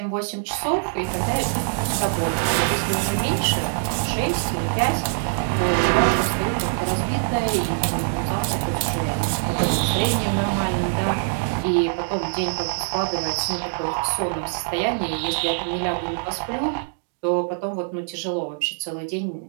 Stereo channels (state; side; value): silent; left; digital silence